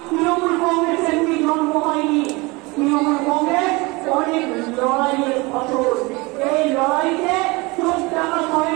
তৃণমূল কংগ্রেস এমনি জন্ম হয়নি, তৃণমূল কংগ্রেস অনেক লড়াইয়ের ফসল। এই লড়াইতে চোখ টাকা হয়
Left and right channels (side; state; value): left; quieter; 24.8 dB